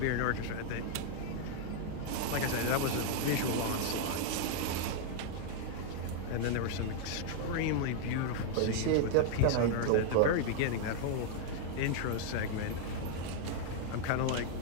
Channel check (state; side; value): different; both; correlation 0.00